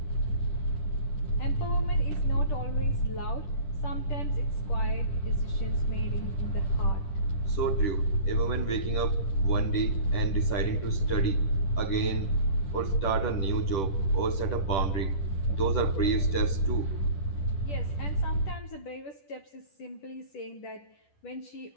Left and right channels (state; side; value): late; right; 10 ms